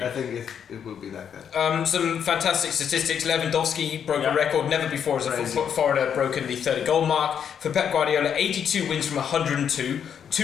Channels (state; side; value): quieter; right; 8.1 dB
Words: I think it will be like that. Some fantastic statistics. Lewandowski broke a record. Never before has a foreigner broken the 30 goal mark. For Pep Guardiola, 82 wins from 102,